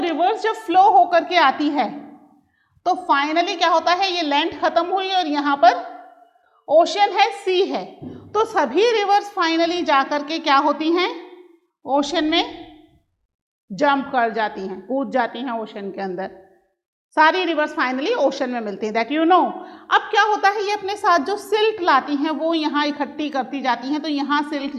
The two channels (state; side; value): identical; both; correlation 1.00